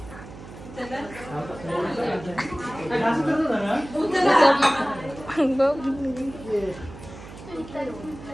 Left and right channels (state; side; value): noise; right; hum, 15 dB below the sound